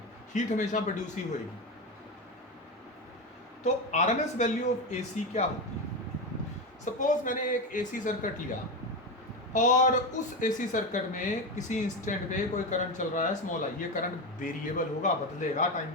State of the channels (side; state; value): both; normal; correlation 0.16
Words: हीट हमेशा प्रोड्यूस ही होगी। तो आरएमएस वैल्यू ऑफ एसी क्या होती है? सपोज मैंने एक एसी सर्किट लिया और उस एसी सर्किट में किसी इंस्टेंट पे कोई करंट चल रहा है स्मॉल आई। ये करंट वेरिएबल होगा, बदलेगा टाइम